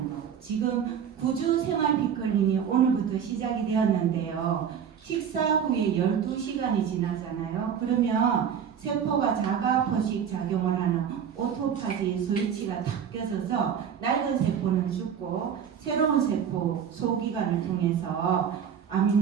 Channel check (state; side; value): quieter; left; 8.0 dB